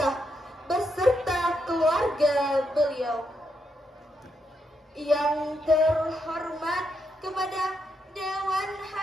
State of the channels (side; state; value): both; normal; correlation 0.81